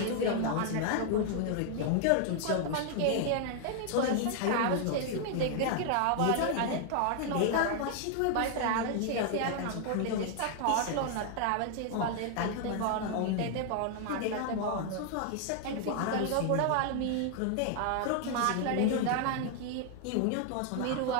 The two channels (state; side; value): different; both; correlation 0.00